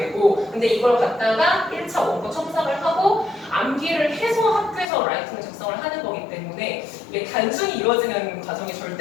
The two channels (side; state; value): right; drops out; at 4.9 s